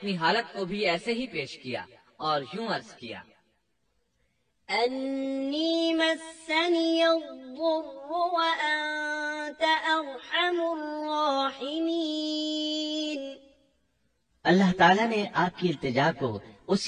حالت کو بھی ایسے ہی پیش کیا اور یوں عرض کیا، أني مسني الضر وأنت أرحم الراحمين۔ اللہ تعالیٰ نے آپ کی التجا کو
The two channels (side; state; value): both; identical; correlation 1.00